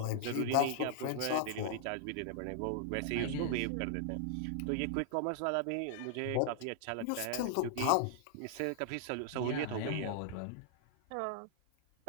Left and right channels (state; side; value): different; both; correlation -0.01